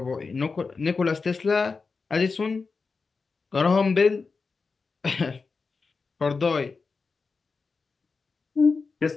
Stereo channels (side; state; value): right; quieter; 4.5 dB